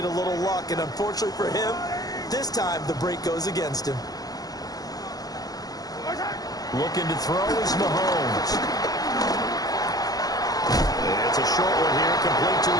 a little luck, and unfortunately for him, this time the break goes against him. Looking to throw is Mahomes. It's a short one here, complete to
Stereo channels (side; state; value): right; late; 0.18 ms